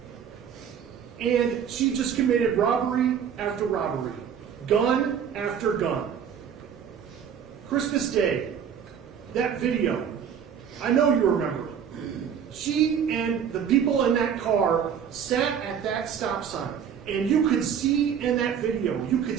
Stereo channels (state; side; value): quieter; left; 8.0 dB